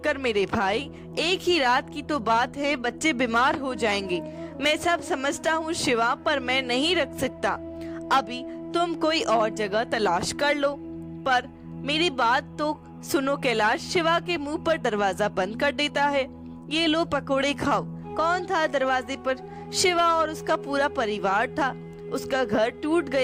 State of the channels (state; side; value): identical; both; correlation 1.00